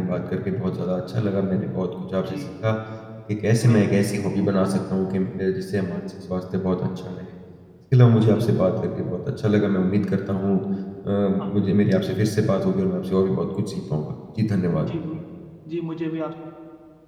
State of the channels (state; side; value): identical; both; correlation 1.00